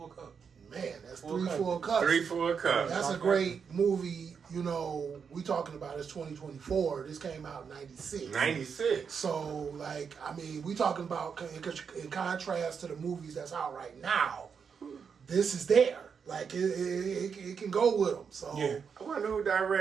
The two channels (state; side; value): quieter; left; 6.4 dB